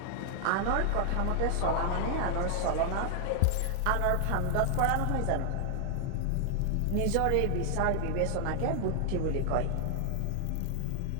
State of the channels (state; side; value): different; both; correlation 0.00